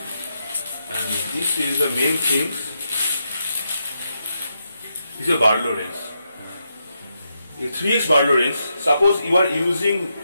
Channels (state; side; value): inverted; both; correlation -0.83